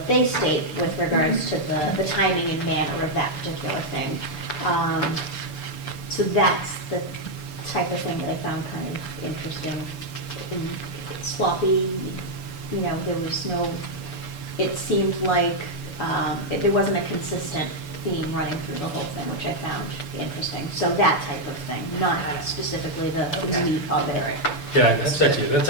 they state with regards to the timing and manner of that particular thing. So that's the type of thing that I found kind of interesting. And sloppy, there was no, it seemed like there wasn't a consistent theme running through the whole thing, which I found interesting. So that type of thing, not specifically the meat of it. Yeah, that's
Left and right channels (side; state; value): right; late; 6.9 ms